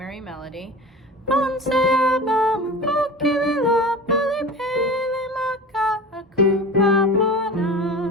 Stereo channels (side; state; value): both; normal; correlation 0.35